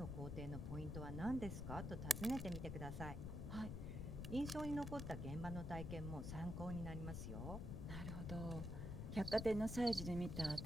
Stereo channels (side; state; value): left; noise; rumble, 4 dB below the sound